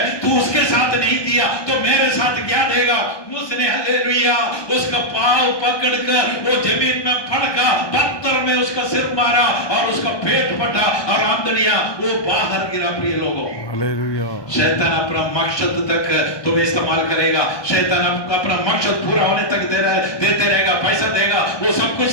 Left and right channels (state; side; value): late; right; 1.2 ms